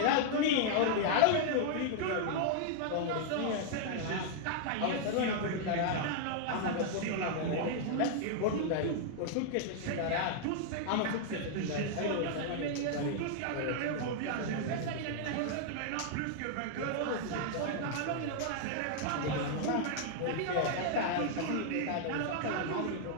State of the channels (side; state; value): both; different; correlation -0.01